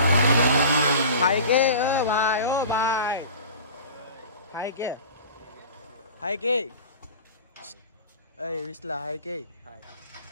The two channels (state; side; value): inverted; both; correlation -0.38